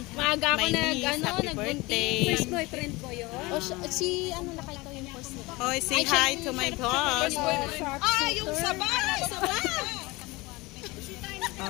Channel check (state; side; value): quieter; right; 22.9 dB